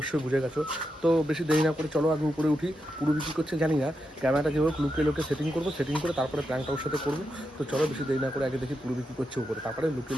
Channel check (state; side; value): normal; both; correlation 0.85